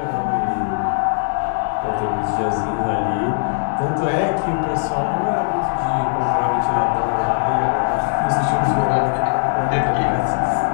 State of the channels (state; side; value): silent; right; digital silence